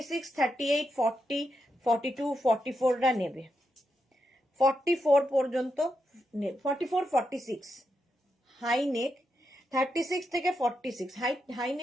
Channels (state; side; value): normal; both; correlation 0.84